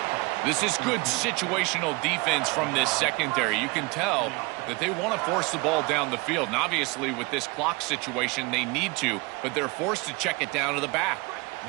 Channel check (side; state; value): left; quieter; 26.0 dB